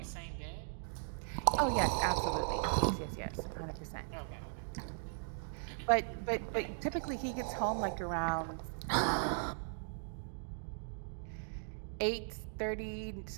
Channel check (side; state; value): left; silent; digital silence